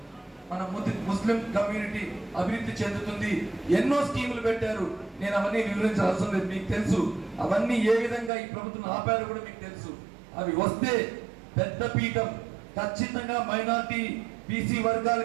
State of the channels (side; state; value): left; drops out; at 8.3 s